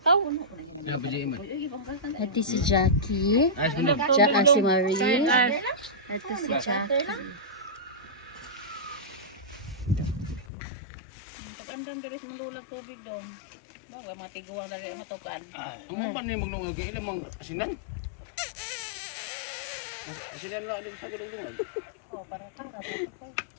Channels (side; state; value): right; drops out; at 10.5 s